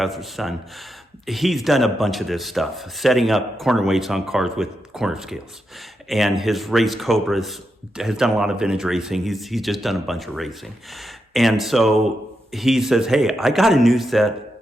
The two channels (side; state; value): both; normal; correlation 0.85